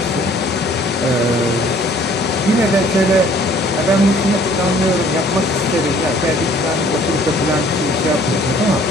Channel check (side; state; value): both; normal; correlation 0.56